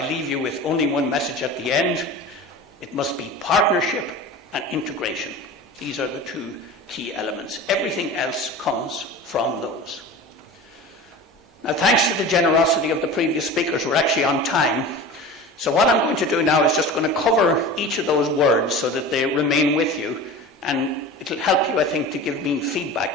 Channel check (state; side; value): normal; both; correlation 0.34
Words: leave you with only one message at the end, it must be partnership and integration. These are the two key elements. Everything else comes from those. Now, thanks to the generosity of the previous speakers, we're actually on time. So what I'm going to do now is just going to cover each of those words so that they remain with you, and it'll help you, I think, to give me